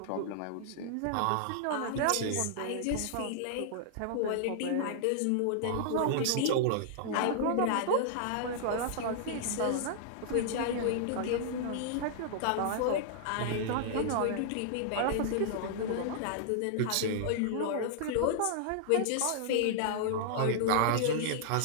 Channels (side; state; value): both; different; correlation -0.01